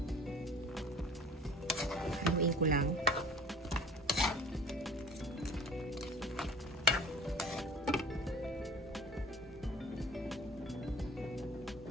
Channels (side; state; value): both; normal; correlation 0.44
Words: Haluin ko lang.